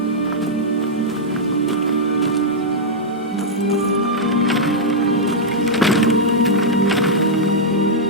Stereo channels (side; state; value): both; normal; correlation -0.06